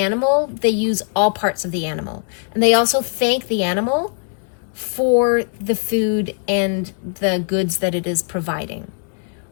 they use all parts of the animal. And they also thank the animal for the food and the goods that it is providing,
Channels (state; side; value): silent; right; 56 dB below the other